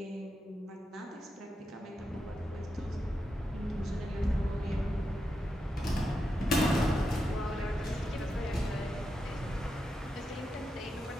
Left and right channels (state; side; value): normal; both; correlation 0.87